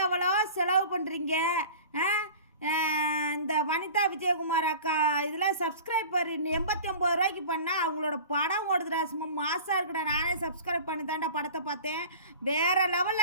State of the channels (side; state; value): both; inverted; correlation -0.39